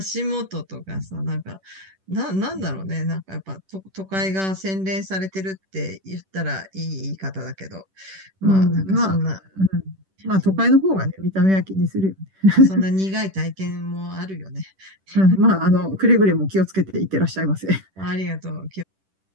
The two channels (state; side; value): late; left; 10 ms